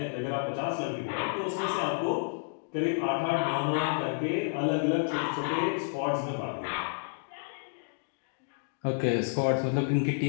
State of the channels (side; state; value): right; silent; digital silence